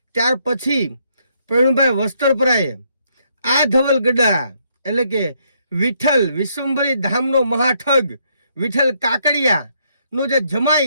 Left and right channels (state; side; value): inverted; both; correlation -0.73